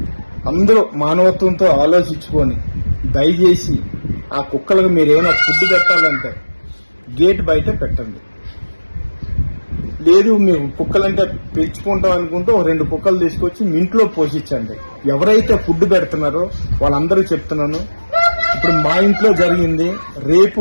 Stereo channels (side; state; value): both; inverted; correlation -1.00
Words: అందరూ మానవత్వంతో ఆలోచించుకొని దయచేసి ఆ కుక్కలకు మీరు ఏమైనా ఫుడ్ పెట్టాలంటే గేట్ బయట పెట్టండి. లేదు మీరు కుక్కలంటే పెంచుకుంటాం అనుకుంటే ఒక 2 కుక్కలు తీసుకొచ్చి మీ ఇంట్లో పోషించండి. ఎవరైతే ఫుడ్ పెడుతున్నారో వాళ్ళందరూ చెప్తున్నాను, ఇప్పుడు మా ఇంట్లో జరిగింది,